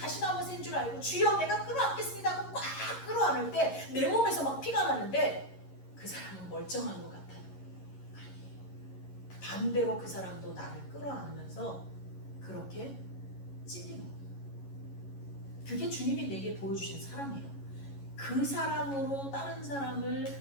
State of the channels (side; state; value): right; late; 11 ms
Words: 줄 알고 주여 내가 끌어안겠습니다 하고 꽉 끌어안을 때 내 몸에서 막 피가 나는데 그 사람은 멀쩡한 것 같아요. 아니에요. 반대로 그 사람도 나를 끌어안으면서 그렇게 찔리는 거예요. 그게 주님이 내게 보여주신 사랑이에요. 그 사랑으로 다른